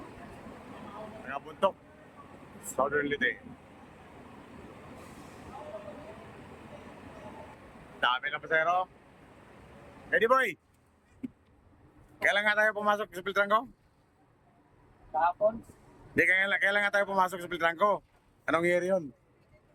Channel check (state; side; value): identical; both; correlation 1.00